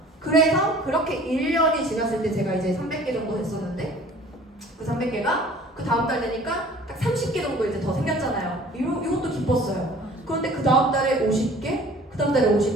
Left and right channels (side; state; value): both; normal; correlation 0.49